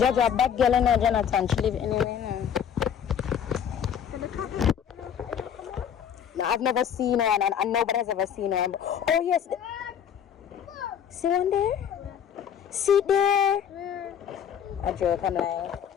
a bad girl, and Jonathan, she live anywhere now. No, I've never seen one, and nobody has ever seen one. Oh yes, see one there? See there? A joke, I'm lying.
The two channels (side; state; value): right; quieter; 8.5 dB